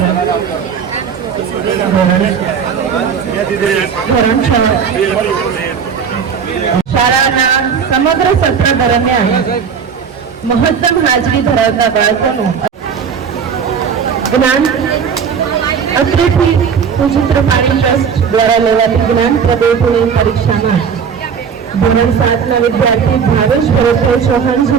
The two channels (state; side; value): quieter; left; 6.8 dB